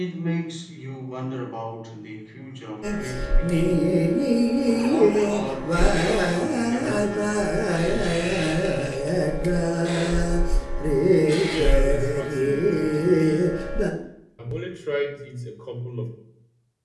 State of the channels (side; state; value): both; identical; correlation 1.00